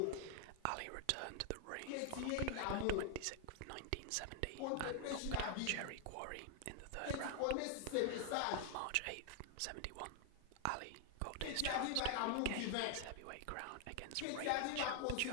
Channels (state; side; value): different; both; correlation 0.00